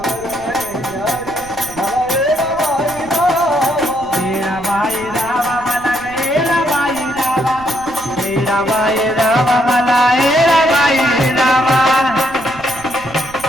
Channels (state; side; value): noise; right; rumble, 20 dB below the sound